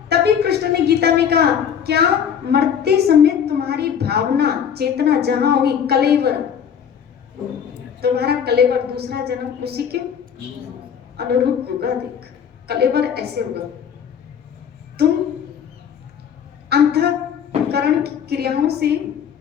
तभी कृष्ण ने गीता में कहा, क्या मरते समय तुम्हारी भावना चेतना जहां होगी, कलेवर, तुम्हारा कलेवर दूसरा जन्म उसी के अनुरूप होगा। देख, कलेवर ऐसे होगा, तुम अंतःकरण की क्रियाओं से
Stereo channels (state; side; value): quieter; right; 8.0 dB